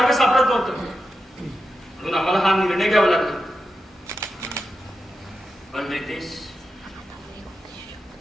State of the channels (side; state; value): both; normal; correlation 0.88